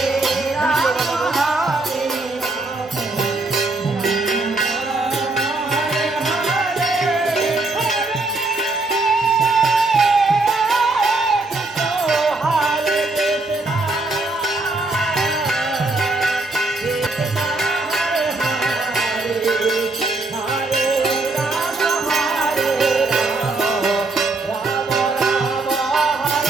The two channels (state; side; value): quieter; left; 3.1 dB